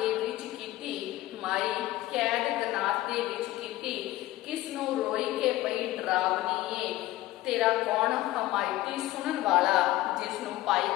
ਵਿੱਚ ਕੀਤੀ ਕਿਸ ਨੂੰ ਰੋਈ ਕੇ ਪਈ ਡਰਾਵਨੀਏ ਤੇਰਾ ਕੌਣ ਹਮਾਇਤੀ ਸੁਣਨ ਵਾਲਾ ਜਿਸ ਨੂੰ ਪਾਈ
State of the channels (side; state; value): right; quieter; 16.5 dB